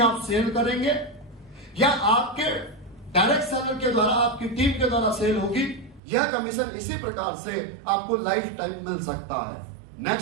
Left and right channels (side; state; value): left; drops out; at 6.0 s